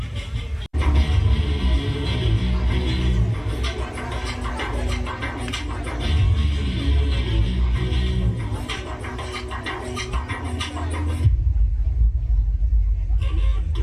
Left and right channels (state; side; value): identical; both; correlation 1.00